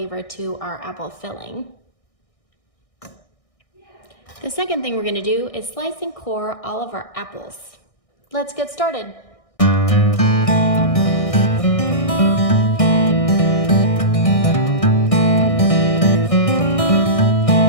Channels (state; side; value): late; right; 1.6 ms